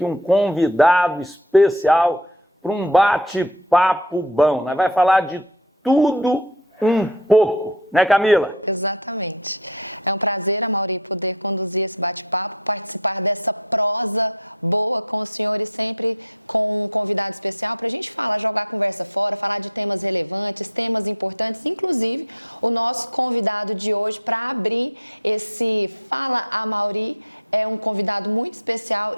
um convidado especial para um bate-papo bom. Nós vamos falar de tudo um pouco, né, Camila? Exatamente. É um prazer, Amaury, poder conduzir esse bate-papo, participar dessa prosa boa com o senhor e sempre com um convidado especial para a gente falar, jogar a conversa fora, falar de temas relevantes, temas importantes, inclusive o nosso convidado de hoje para abrir esse Fala Amaury é um convidado muito especial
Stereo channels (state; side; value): normal; both; correlation 0.16